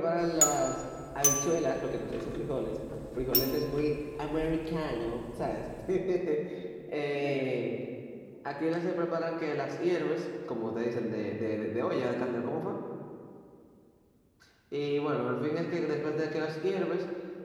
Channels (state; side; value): identical; both; correlation 1.00